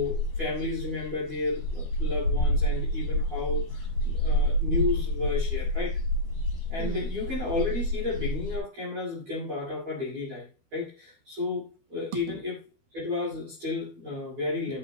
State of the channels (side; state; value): left; late; 12 ms